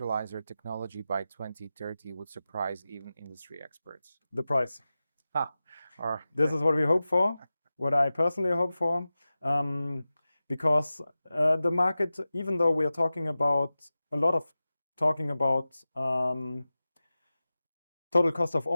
technology by 2030 would surprise even industry experts? The price. This is what we hope for, what I personally hope for, because the market, even though we are talking about total cost of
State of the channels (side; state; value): both; inverted; correlation -0.95